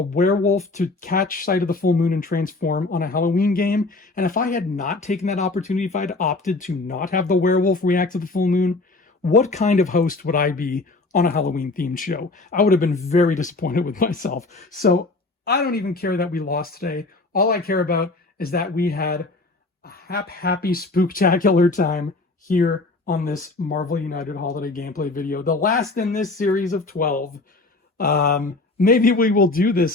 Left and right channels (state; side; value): quieter; right; 3.3 dB